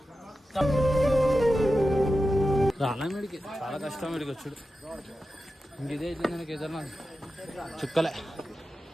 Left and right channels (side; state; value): both; normal; correlation 0.92